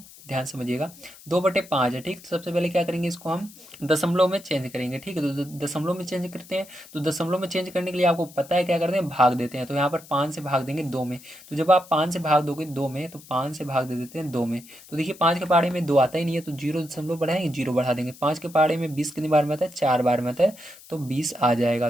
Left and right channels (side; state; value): left; noise; hiss, 21 dB below the sound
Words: ध्यान समझिएगा। 2/5 है, ठीक, तो सबसे पहले क्या करेंगे, इसको हम दशमलव में चेंज करेंगे। ठीक है, तो दशमलव में चेंज करते हैं। तो दशमलव में चेंज करने के लिए आपको पता है क्या करते हैं, भाग देते हैं। तो यहाँ पर 5 से भाग देंगे 2 में, तो जब आप 5 से भाग दोगे 2 में, तो 5 से भाग दे देते हैं 2 में। तो देखिए 5 के पहाड़े में 2 आता ही नहीं है, तो 0 दशमलव बढ़ाएंगे, 0 बढ़ा देंगे। 5 के पहाड़े में 20 कितनी बार में आता है, 4 बार में आता है, तो 20 आ जाएगा।